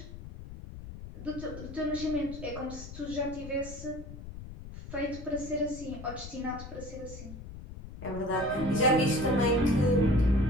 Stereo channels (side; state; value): left; noise; rumble, 12 dB below the sound